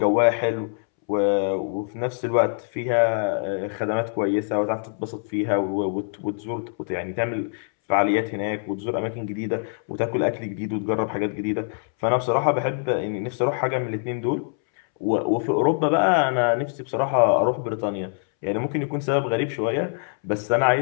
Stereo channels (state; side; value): silent; right; 62 dB below the other